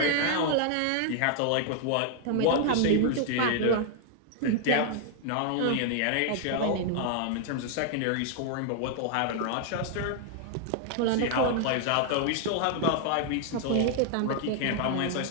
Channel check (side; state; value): both; different; correlation 0.00